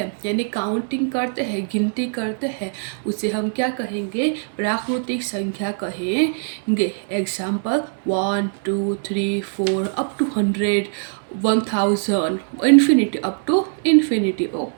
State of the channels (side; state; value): left; silent; digital silence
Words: यानी काउंटिंग करते हैं, गिनती करते हैं, उसे हम क्या कहेंगे, प्राकृतिक संख्या कहेंगे। Example 1, 2, 3, 4 up to 100, 1000, infinity, up to infinity.